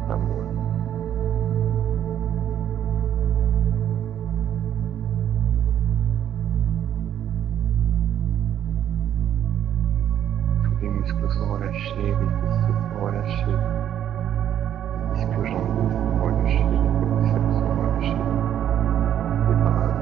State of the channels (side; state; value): left; quieter; 10.3 dB